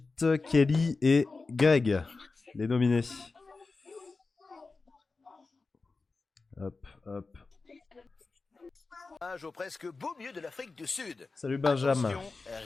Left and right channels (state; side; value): quieter; right; 3.9 dB